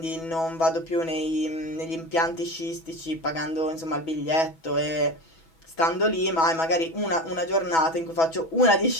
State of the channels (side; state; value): right; late; 6.1 ms